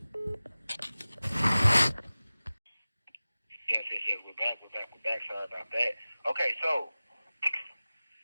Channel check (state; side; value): inverted; both; correlation -0.97